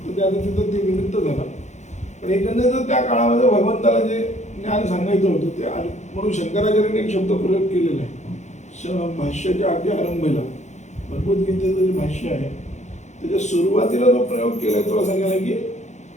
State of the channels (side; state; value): right; late; 0.34 ms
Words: त्या तिथं ते निमित्त झालं, पण एकंदरीत त्या काळामध्ये भगवंताला जे ज्ञान सांगायचं होतं ते म्हणून शंकराचार्यांनी एक शब्द प्रयोग केलेला आहे. भाष्याच्या अगदी आरंभीला भगवद्गीतेचं जे भाष्य आहे त्याच्या सुरुवातीला जो प्रयोग केलाय तो असा केला की